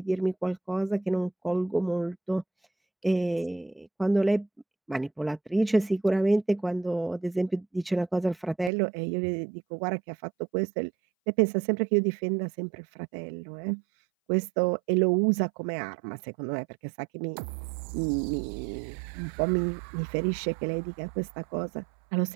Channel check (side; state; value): left; drops out; at 8.7 s